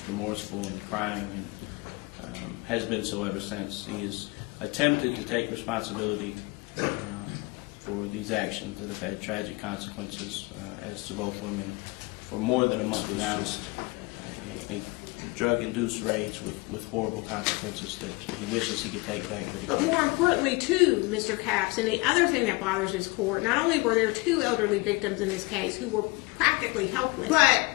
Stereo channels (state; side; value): quieter; right; 25.5 dB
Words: remorseful and crying, and has been so ever since. He has attempted to take responsibility for these actions that have had tragic consequences as to both women for more than a month now. Just a drug-induced rage with horrible consequences that he wishes he could take back, but he can't. But more importantly, too, Mr. Capps, and the other thing that bothers this court, not only were there 2 elderly victims in this case who were practically helpless, but